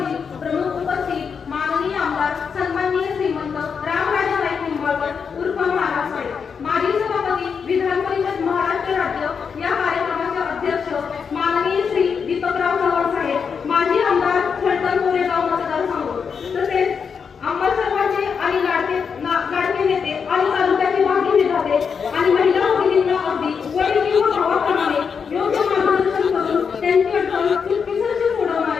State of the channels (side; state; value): right; quieter; 6.2 dB